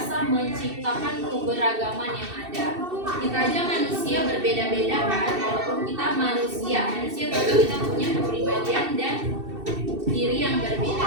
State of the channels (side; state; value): left; late; 2.7 ms